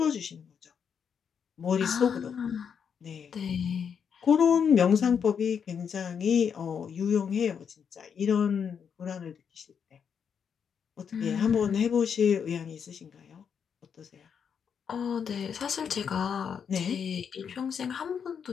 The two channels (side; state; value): right; quieter; 7.2 dB